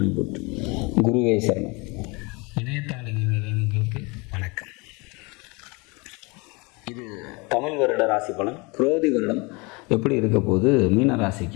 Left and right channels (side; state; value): right; quieter; 27.8 dB